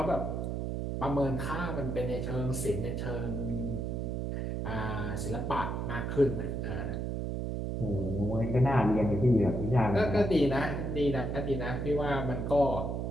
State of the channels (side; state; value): right; noise; hum, 2 dB below the sound